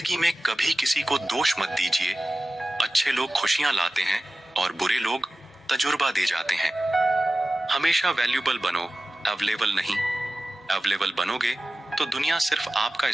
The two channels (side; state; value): both; normal; correlation 0.95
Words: में कभी किसी को दोष मत दीजिए। अच्छे लोग खुशियां लाते हैं और बुरे लोग तजुर्बा दे जाते हैं। हमेशा वैल्यूबल बनो, अवेलेबल नहीं। अवेलेबल बनोगे तो दुनिया सिर्फ आपका